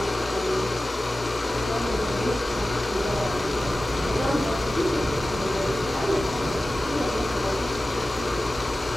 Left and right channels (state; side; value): normal; both; correlation 0.95